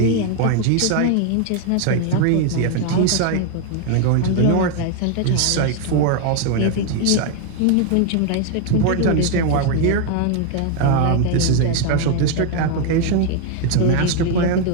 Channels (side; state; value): both; different; correlation 0.01